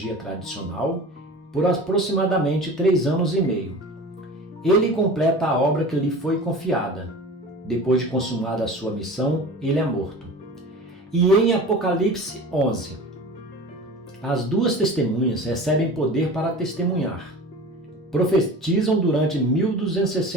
tradicional, por aproximadamente 3 anos e meio. Ele completa a obra que lhe foi confiada. Depois de consumada a sua missão, ele é morto. E em Apocalipse 11, as duas testemunhas recebem poder para testemunhar. Profetizam durante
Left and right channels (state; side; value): normal; both; correlation 0.37